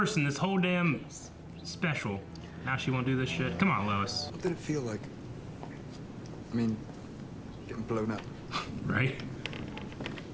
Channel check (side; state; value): both; identical; correlation 1.00